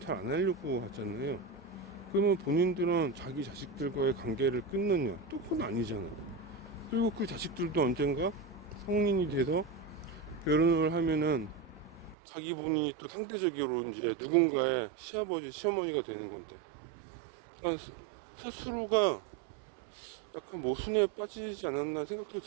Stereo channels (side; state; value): left; drops out; at 12.2 s